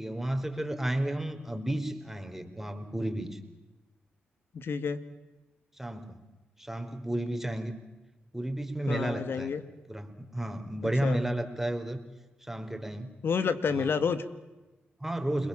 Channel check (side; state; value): both; normal; correlation 0.88